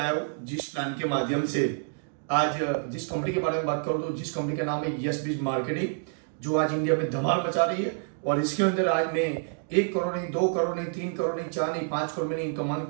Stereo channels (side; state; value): left; silent; digital silence